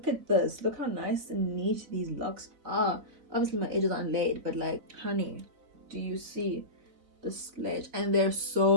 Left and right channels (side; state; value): left; late; 4.1 ms